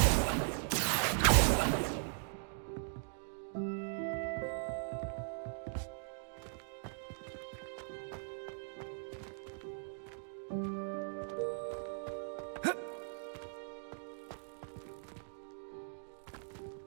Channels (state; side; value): silent; left; digital silence